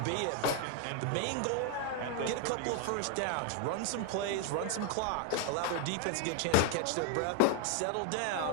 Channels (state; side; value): different; both; correlation 0.00